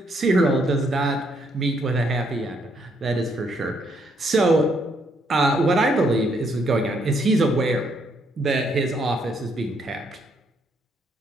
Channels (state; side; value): normal; both; correlation 0.72